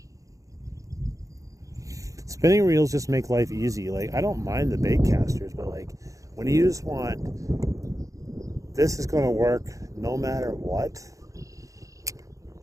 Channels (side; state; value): left; late; 0.16 ms